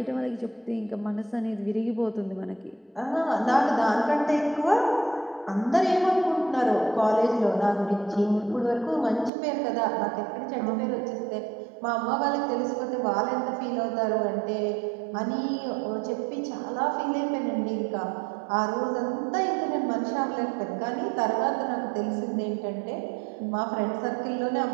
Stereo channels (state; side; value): drops out; left; at 9.3 s